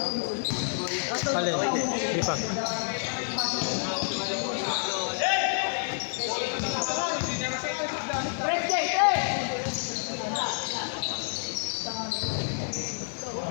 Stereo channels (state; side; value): silent; right; digital silence